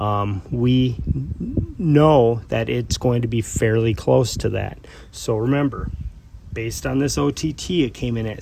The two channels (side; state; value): both; identical; correlation 1.00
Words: we know that it's going to be fairly close to that. So remember, based on this OTT, it came in at